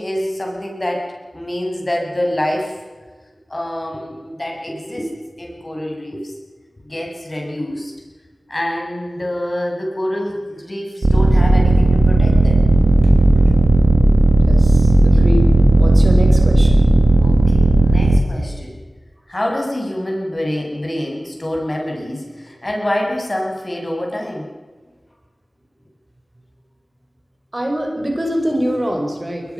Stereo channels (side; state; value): both; normal; correlation 0.96